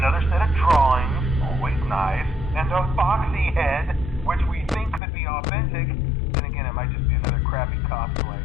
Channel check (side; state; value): right; drops out; at 5.0 s